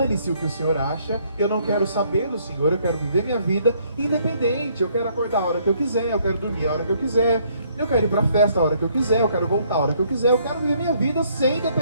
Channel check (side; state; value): both; inverted; correlation -0.66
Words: o que o Senhor acha, eu não quero saber do Senhor, eu quero viver minha vida independente. Eu quero acordar a hora que eu quiser, eu quero dormir a hora que eu quiser, eu quero ir para a festa a hora que eu quiser, eu quero voltar a hora que eu quiser, eu quero viver minha vida sem